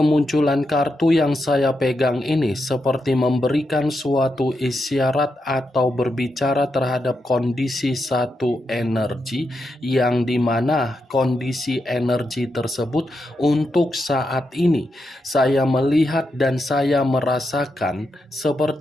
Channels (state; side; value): normal; both; correlation 0.84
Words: kartu yang saya pegang ini seperti memberikan suatu isyarat atau berbicara terhadap kondisi satu energi, yang dimana kondisi energi tersebut untuk saat ini saya melihat dan saya merasakan